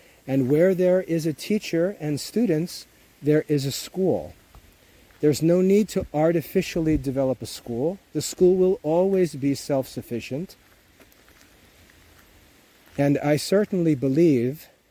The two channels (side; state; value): both; identical; correlation 1.00